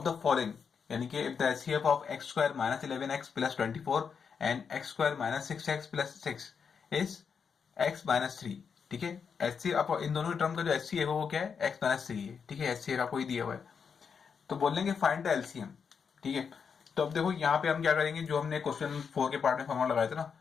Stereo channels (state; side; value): quieter; right; 6.3 dB